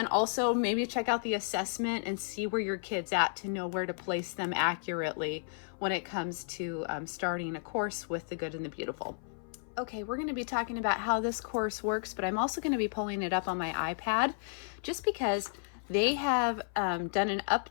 also maybe check out the assessment and see where your kid's at to know where to place them accurately when it comes to starting a course with The Good and the Beautiful. Okay, we're going to be talking about how this course works, but I'm also going to be pulling it up on my iPad just because they have done an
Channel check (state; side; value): silent; right; 56 dB below the other